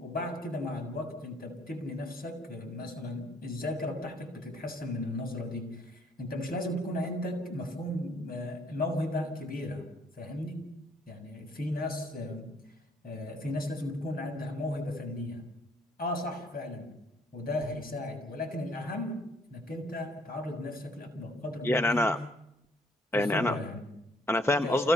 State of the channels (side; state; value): both; normal; correlation 0.64